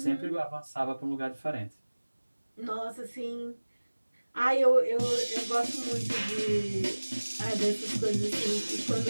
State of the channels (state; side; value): inverted; both; correlation -1.00